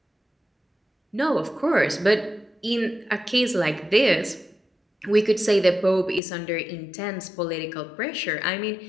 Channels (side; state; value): right; drops out; at 6.2 s